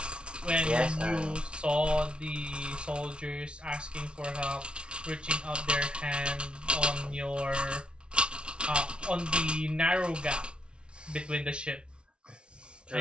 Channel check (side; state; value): left; late; 0.057 ms